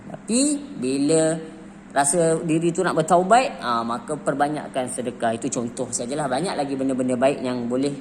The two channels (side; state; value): both; identical; correlation 1.00